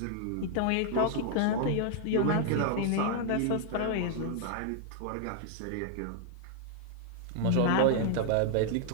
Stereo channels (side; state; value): both; different; correlation -0.01